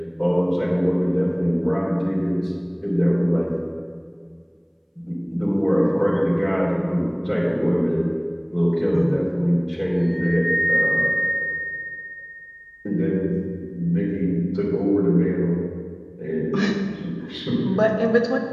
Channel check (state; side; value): identical; both; correlation 1.00